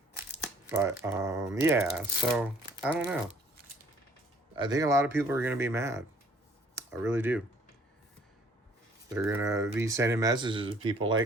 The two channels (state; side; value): normal; both; correlation 0.59